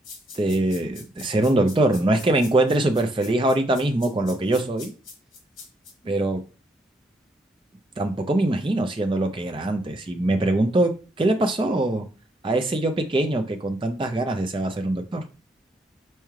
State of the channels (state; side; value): normal; both; correlation 0.74